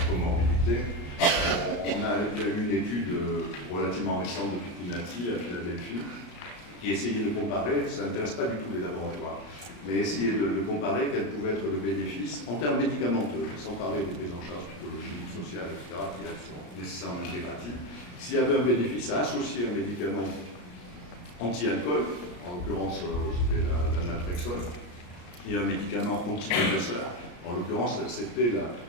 comorbidité. Il y a eu une étude relativement récente de Pitinati à Philadelphie qui essayait de comparer, ça n'intéresse pas du tout les laboratoires, mais essayer de comparer quel pouvait être le bénéfice en termes médicamenteux, sans parler des prises en charge psychologiques, sociales, etc., qui elles sont nécessairement intégratives. S'il y avait un bénéfice à associer un médicament anti-alcool, en l'occurrence c'était la naltrexone, et un médicament antidépresseur, en l'occurrence c'était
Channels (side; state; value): right; late; 34 ms